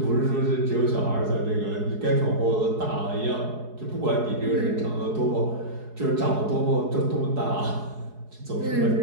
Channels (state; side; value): late; left; 4.7 ms